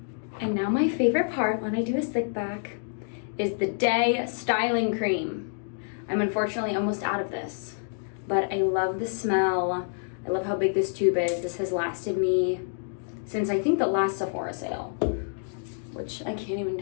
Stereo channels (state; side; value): silent; right; digital silence